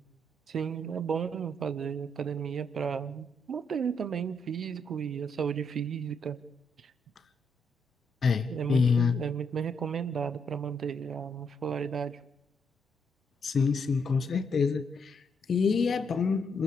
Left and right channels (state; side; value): normal; both; correlation 0.76